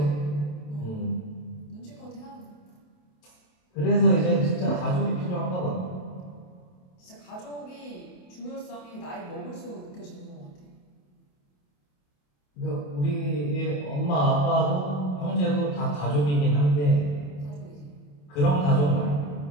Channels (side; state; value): right; late; 27 ms